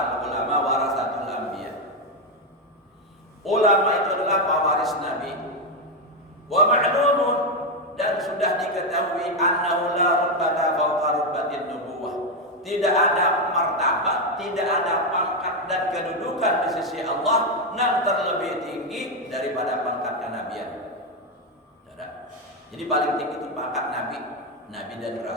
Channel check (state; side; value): normal; both; correlation 0.06